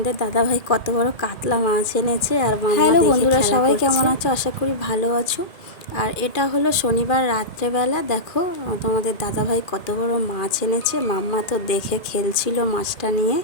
দাদাভাই কত বড় কাতলা মাছ এনেছে আর হ্যালো বন্ধুরা, সবাই কেমন আছো? আশা করি ভালো আছো। আর এটা হলো শনিবার রাত্রেবেলা। দেখো তোমাদের দাদাভাই কত বড় মাছ এনেছে। মাম্মা তো দেখে খেলছিল মাছটা নিয়ে।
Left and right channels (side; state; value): right; late; 2.4 ms